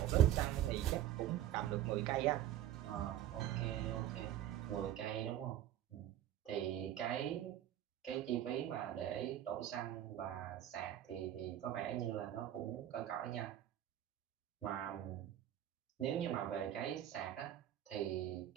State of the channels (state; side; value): quieter; left; 11.9 dB